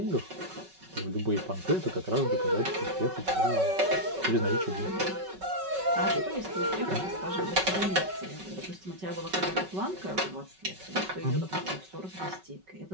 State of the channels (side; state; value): left; late; 5.3 ms